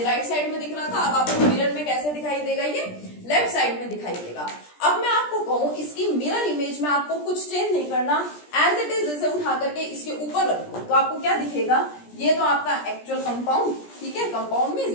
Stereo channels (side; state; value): right; late; 17 ms